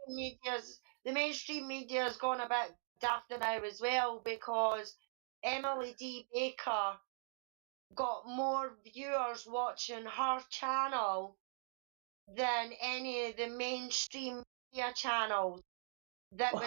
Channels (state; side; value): silent; left; digital silence